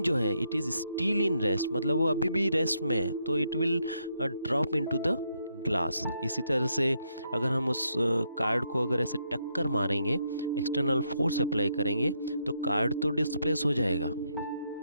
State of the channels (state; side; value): inverted; both; correlation -0.77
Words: जो है it is still in rest, मतलब वो अभी भी रेस्ट में है, तो it will drop into the glass. इसी तरह से अगर हम उस कार्ड को अगर ऐसे टक्कर मारेंगे, एक्सटर्नल फोर्स अप्लाई करेंगे तो कार्ड तो डिस्प्लेस हो जाएगा,